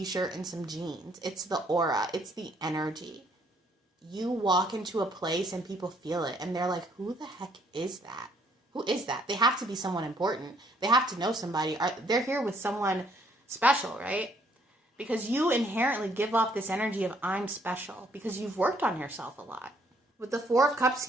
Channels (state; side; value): normal; both; correlation 0.66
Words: and some jeans. It's the aura. It's the energy. You walk into a place and people feel it, and they're like, who the heck is that? Who is that? They have to be someone important. They have to know somebody. They're here with someone special, right? Because you inherently give off this energy of I'm special because you've worked on yourself a lot. With the 4 of Cups